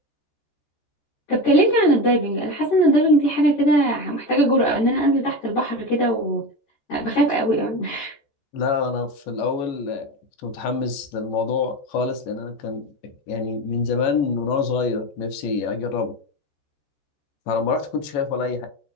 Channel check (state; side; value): late; right; 14 ms